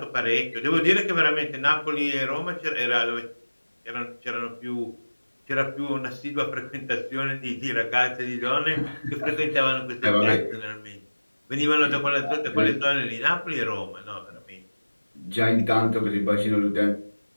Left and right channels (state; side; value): inverted; both; correlation -1.00